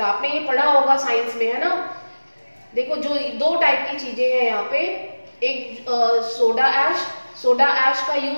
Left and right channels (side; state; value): both; inverted; correlation -1.00